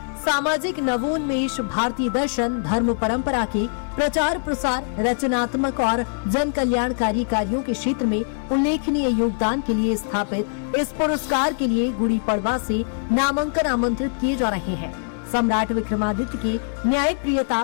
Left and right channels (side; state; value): right; silent; digital silence